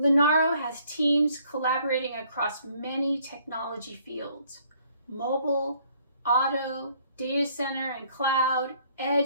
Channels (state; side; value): inverted; both; correlation -0.63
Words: has teams collaborating across many technology fields: mobile, auto, data center and cloud,